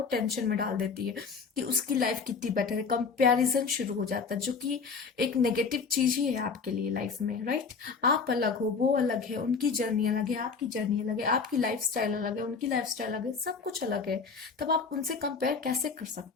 टेंशन में डाल देती है कि उसकी लाइफ कितनी बेटर है, कंपैरिजन शुरू हो जाता है, जो कि एक नेगेटिव चीज ही है आपके लिए लाइफ में, राइट। आप अलग हो, वो अलग है, उनकी जर्नी अलग है, आपकी जर्नी अलग है, आपकी लाइफ स्टाइल अलग है, उनकी लाइफ स्टाइल अलग है, सब कुछ अलग है, तब आप उनसे कंपेयर कैसे कर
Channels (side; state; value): right; quieter; 5.2 dB